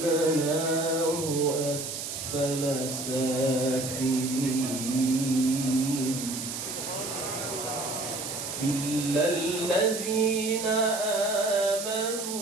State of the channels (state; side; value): noise; right; hiss, 6 dB below the sound